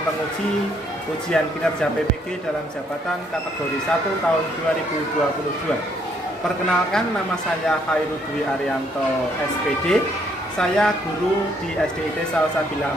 penguji ujian kinerja PPG dalam jabatan kategori 1 tahun 2022. Perkenalkan, nama saya Khairul Dwi Arianto SPD. Saya guru di SDIT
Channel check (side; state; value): both; normal; correlation 0.69